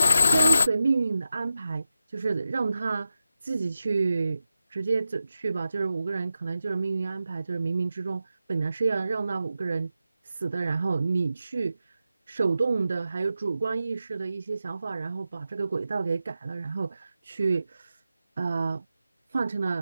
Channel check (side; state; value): both; inverted; correlation -0.91